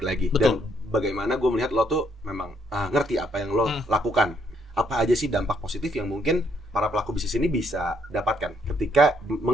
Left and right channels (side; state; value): both; normal; correlation 0.71